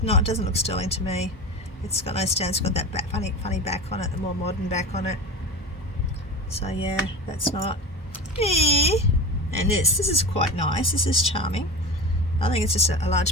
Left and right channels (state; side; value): normal; both; correlation 0.29